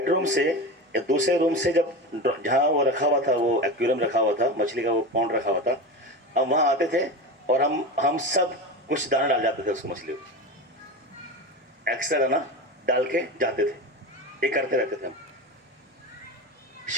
से या दूसरे रूम से, जब जहाँ वो रखा हुआ था, वो एक्वेरियम रखा हुआ था, मछली का वो पॉन्ड रखा हुआ था, हम वहाँ आते थे और हम सब कुछ दाना डाल जाते थे उसको, मछली को एक्स्ट्रा दाना डाल के जाते थे। ये करते रहते थे हम।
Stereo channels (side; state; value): both; normal; correlation 0.25